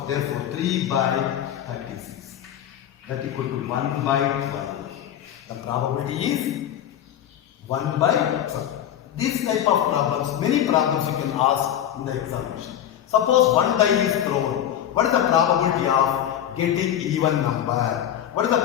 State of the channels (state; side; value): quieter; right; 10.7 dB